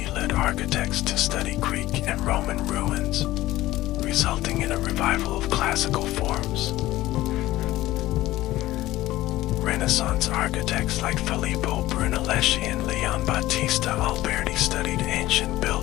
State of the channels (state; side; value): quieter; right; 16.4 dB